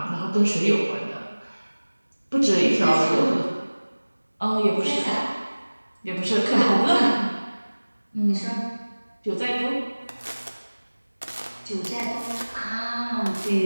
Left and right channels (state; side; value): inverted; both; correlation -1.00